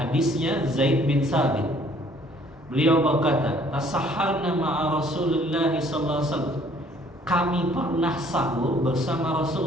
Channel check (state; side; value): normal; both; correlation 0.59